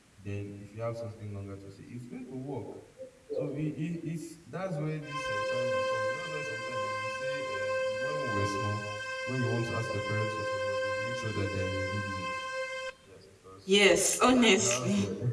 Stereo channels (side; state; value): both; identical; correlation 1.00